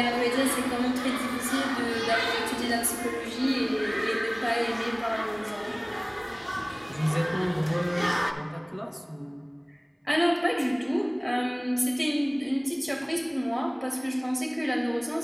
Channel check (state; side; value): identical; both; correlation 1.00